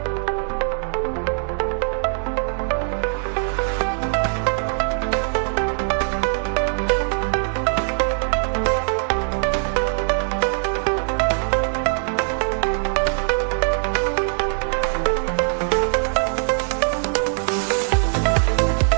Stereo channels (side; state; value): left; silent; 59 dB below the other